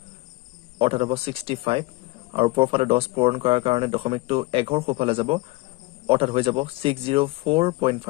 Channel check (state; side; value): quieter; right; 22.3 dB